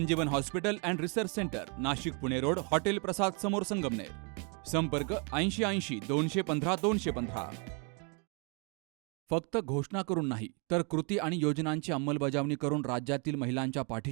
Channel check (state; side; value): quieter; left; 35.5 dB